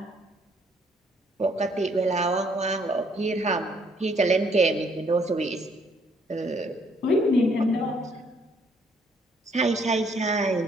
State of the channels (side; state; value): both; normal; correlation 0.66